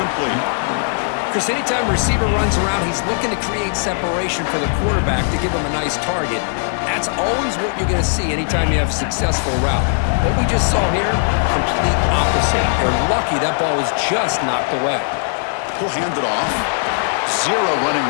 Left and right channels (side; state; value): right; silent; 64 dB below the other